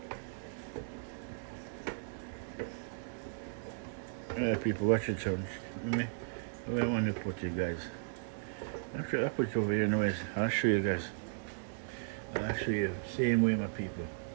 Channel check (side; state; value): left; silent; digital silence